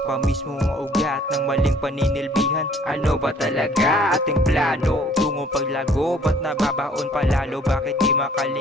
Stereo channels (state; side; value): normal; both; correlation 0.56